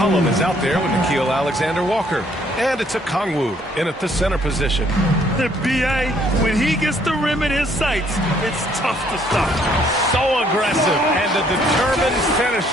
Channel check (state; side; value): normal; both; correlation 0.65